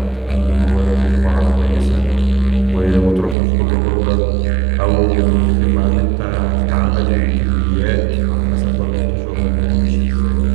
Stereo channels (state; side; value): drops out; left; at 3.4 s